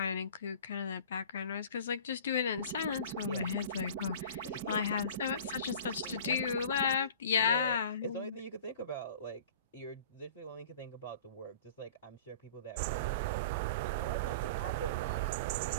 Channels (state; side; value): inverted; both; correlation -0.41